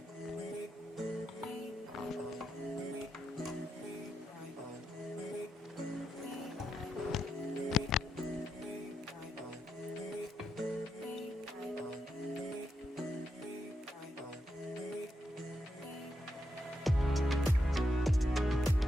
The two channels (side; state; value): both; normal; correlation 0.83